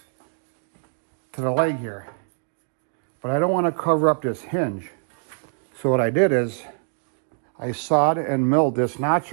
to the leg here. But I don't want to cover up this hinge. So what I did is I sawed and milled this notch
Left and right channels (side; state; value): left; silent; 61 dB below the other